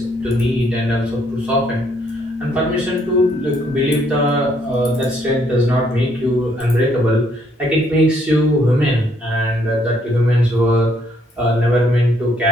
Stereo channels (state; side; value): normal; both; correlation 0.69